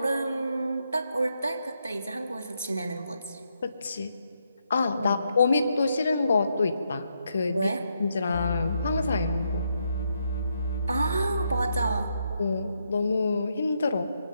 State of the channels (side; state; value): both; inverted; correlation -0.79